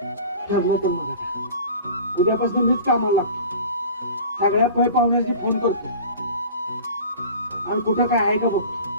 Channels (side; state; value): both; inverted; correlation -0.39